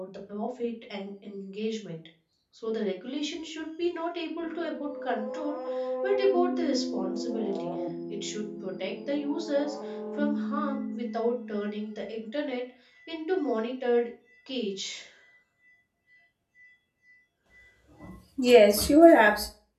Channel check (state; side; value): identical; both; correlation 1.00